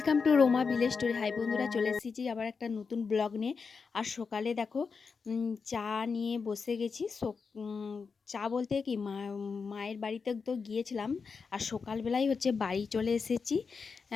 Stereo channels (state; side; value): quieter; right; 5.2 dB